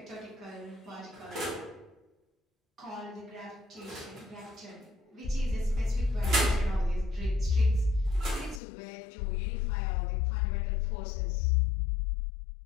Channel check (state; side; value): drops out; right; at 8.6 s